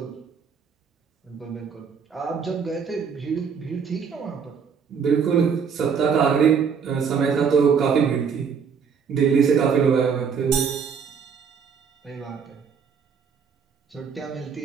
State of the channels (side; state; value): left; quieter; 6.5 dB